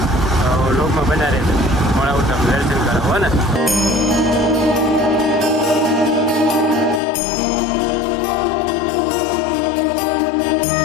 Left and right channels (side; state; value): right; drops out; at 7.0 s